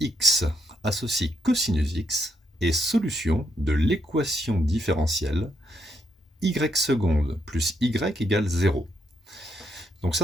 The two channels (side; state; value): both; normal; correlation 0.78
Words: associe cosinus x est solution de l'équation différentielle y seconde plus y égale 0. Donc